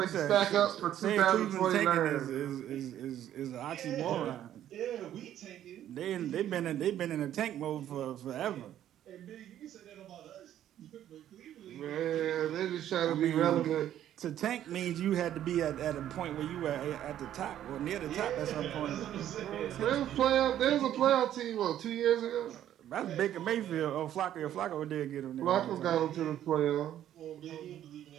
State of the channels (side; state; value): left; quieter; 11.4 dB